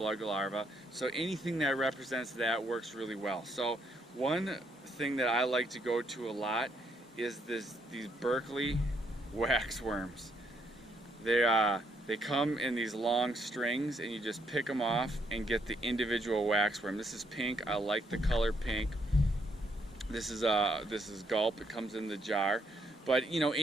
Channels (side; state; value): both; normal; correlation 0.73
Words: larvae, so anything that represents that works really well. So one thing that I like to go to a lot is these Berkeley waxworms. They come in these long strings and you just pick them off and get the individual waxworm. This is pink. I like the color pink. This is Gulp. It comes in the jar. But